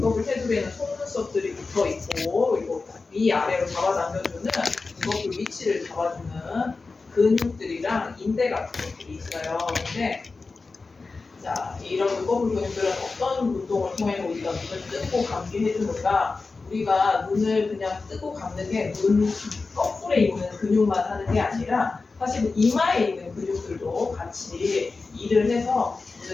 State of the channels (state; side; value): quieter; right; 4.0 dB